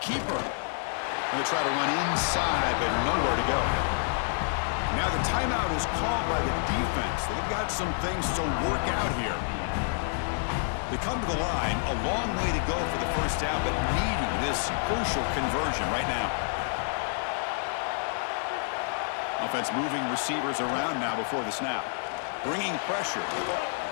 keeper. Going to try to run inside, but nowhere to go. Now the timeout is called by the defense. They've got some things to work out here. They come to the line, a long way to go for the first down, but needing this crucial conversion right now. Offense moving receivers around now before the snap. Bringing pressure.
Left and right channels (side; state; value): right; silent; digital silence